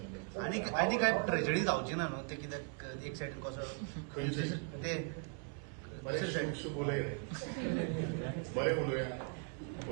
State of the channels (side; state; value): left; quieter; 37.1 dB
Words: घेतले. आनी काय ट्रेजडी जावची ना न्हू ते कित्याक एक सायडीन कसो ते बोलय रे बरे उलोवया.